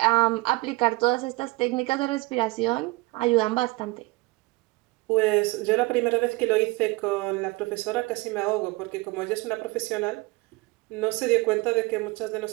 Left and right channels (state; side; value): quieter; left; 23.5 dB